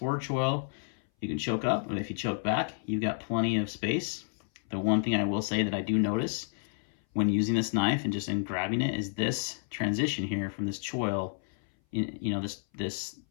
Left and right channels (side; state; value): right; silent; 57 dB below the other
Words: choil. You can choke up, and if you choke back, you've got plenty of space. The one thing I will say that I do notice when using this knife and just in grabbing it is this transition here from this choil. You know, this